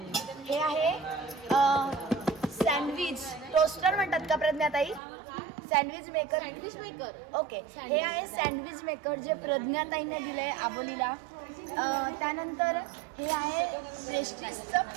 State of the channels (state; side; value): drops out; left; at 5.0 s